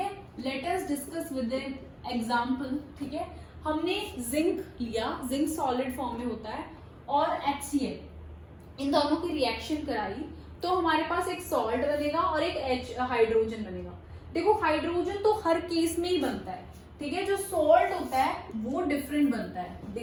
Let us discuss with an example, ठीक है। हमने जिंक लिया, जिंक सॉलिड फॉर्म में होता है, और HCl, इन दोनों की रिएक्शन कराई तो हमारे पास एक सॉल्ट बनेगा और एक हाइड्रोजन बनेगा। देखो, हाइड्रोजन तो हर केस में ही बनता है, ठीक है, जो सॉल्ट होता है वो डिफरेंट बनता है।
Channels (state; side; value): identical; both; correlation 1.00